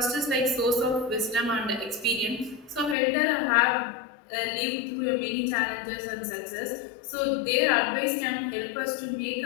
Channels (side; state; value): right; drops out; at 3.0 s